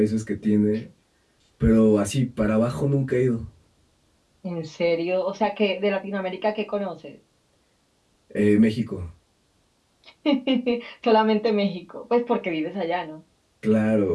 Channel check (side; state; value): both; identical; correlation 1.00